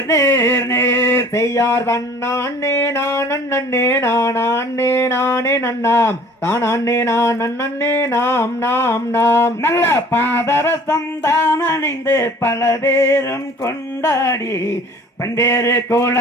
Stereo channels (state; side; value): normal; both; correlation 0.50